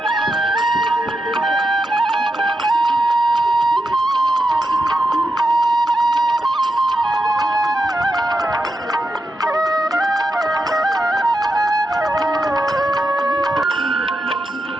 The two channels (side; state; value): both; normal; correlation 0.87